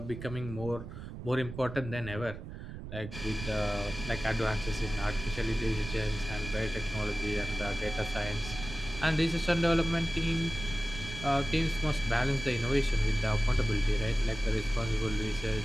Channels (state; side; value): noise; right; rumble, 10 dB below the sound